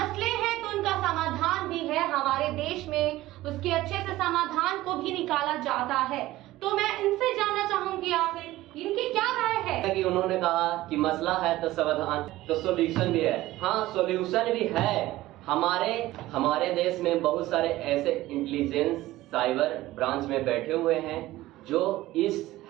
हैं तो उनका समाधान भी है हमारे देश में, उसके अच्छे से समाधान को भी निकाला जाता है। तो मैं इनसे जानना चाहूंगी आखिर इनकी क्या राय है। कि उन्होंने कहा कि मसला है तो समाधान, तो सॉल्यूशन भी है। हाँ, सॉल्यूशन भी है। हमारे देश में बहुत सारे ऐसे इंटेलिजेंस साइबर ब्रांच में बैठे हुए हैं जो इस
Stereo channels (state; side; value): quieter; left; 16.7 dB